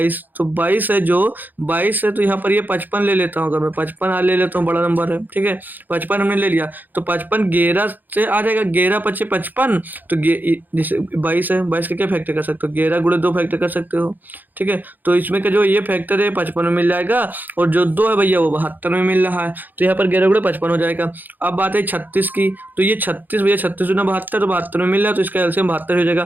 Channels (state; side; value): late; left; 0.086 ms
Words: तो 22 है, जो 22 है तो यहाँ पर ये 55 ले लेता हूँ। अगर मैं 55 ले लेता हूँ, बड़ा नंबर है। ठीक है, 55 हमने ले लिया, तो 55 11 से आ जाएगा, 11 पचे 55। तो जैसे 22 है, 22 का क्या फैक्टर कर सकते हो? 11 गुणे 2 फैक्टर कर सकते हो। ठीक है, तो इसमें का जो ये फैक्टर है 55 में मिल जाएगा, और जो 2 है भैया वो 72 में मिल रहा है, तो यहाँ पर 11 गुणे 55 हो जाएगा। अब बात है 36 की, तो ये 36 भैया 36 गुना 72, तो 72 में मिल रहा है, तो इसका एलसीएम 72 हो